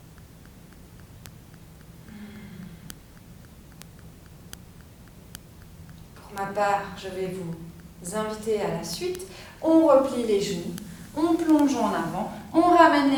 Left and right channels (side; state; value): both; identical; correlation 1.00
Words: Pour ma part, je vais vous inviter à la suite. On replie les genoux, on plonge en avant, on ramène les